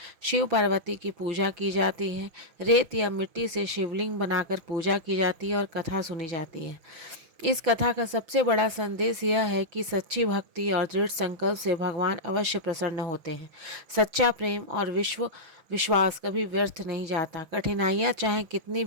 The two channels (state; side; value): late; left; 6.1 ms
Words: शिव पार्वती की पूजा की जाती है। रेत या मिट्टी से शिवलिंग बनाकर पूजा की जाती है और कथा सुनी जाती है। इस कथा का सबसे बड़ा संदेश यह है कि सच्ची भक्ति और दृढ़ संकल्प से भगवान अवश्य प्रसन्न होते हैं। सच्चा प्रेम और विश्वास कभी व्यर्थ नहीं जाता। कठिनाइयाँ चाहे कितनी